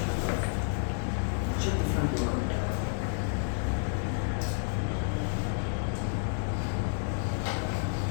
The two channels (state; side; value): silent; right; 58 dB below the other